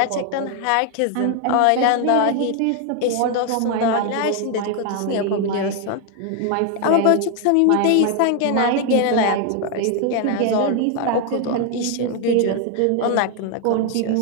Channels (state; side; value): different; both; correlation 0.01